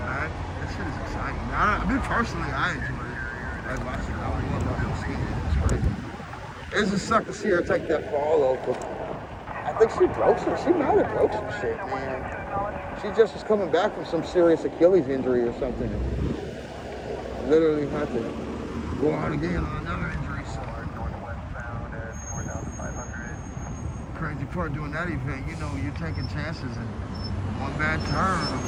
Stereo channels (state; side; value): identical; both; correlation 1.00